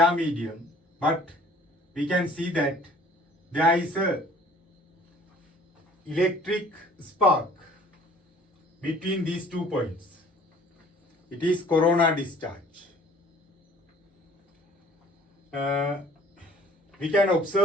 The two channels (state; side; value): normal; both; correlation 0.53